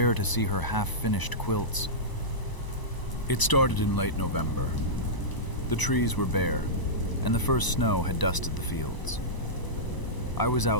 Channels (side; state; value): right; late; 1.0 ms